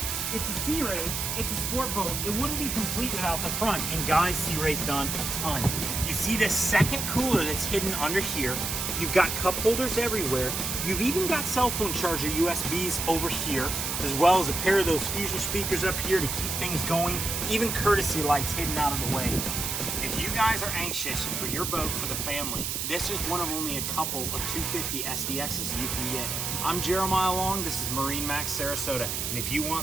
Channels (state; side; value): noise; right; hiss, 2 dB below the sound